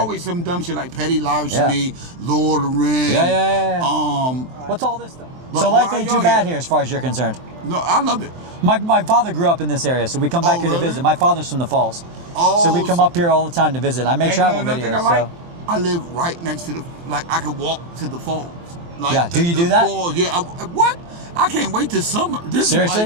some dumb shit like petty larceny, Lord of the Rings. Yeah. Um, What's all this stuff? But So life why ain't y'all too bad here as far as you're concerned. No, I love it. My father grew up in this area, so we come back here to really? visit. My father's from the Falls. Oh, So we come up here all the time to visit. I make And travel another thing videos. I like, So I live right next to I can walk to the falls. Like Yeah, do you do that? Falls, yeah. What? I can't wait till summer. This Seriously?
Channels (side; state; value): left; late; 23 ms